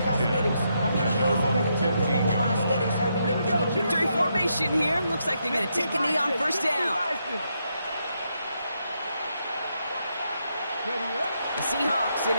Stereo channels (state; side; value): inverted; both; correlation -0.80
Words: Victory formation here. Looks like they're going to take a knee on first down. The Seahawks in